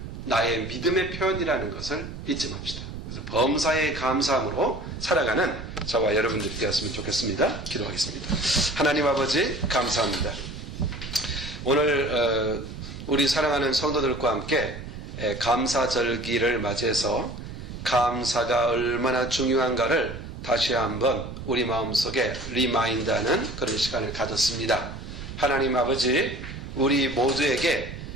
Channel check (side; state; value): right; noise; rumble, 10 dB below the sound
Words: 나의 믿음의 표현이라는 것을 잊지 맙시다. 그래서 범사의 감사함으로 살아가는 저와 여러분들이 되었으면 좋겠습니다. 기도하겠습니다. 하나님 아버지 감사합니다. 오늘 우리 사랑하는 성도들과 함께 감사절기를 맞이해서 감사가 얼마나 중요한가를 다시 한번 우리 마음속에 리마인드하는 그런 시간을 가졌습니다. 하나님 아버지 우리 모두에게